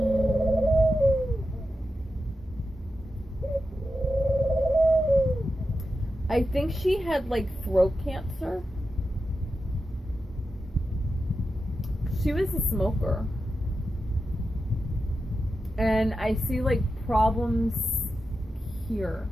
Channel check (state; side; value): normal; both; correlation 0.90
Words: I think she had, like, throat cancer. She was a smoker. And I see, like, problems here.